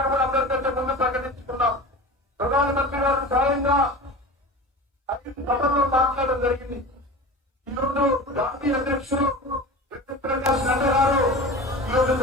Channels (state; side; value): normal; both; correlation 0.33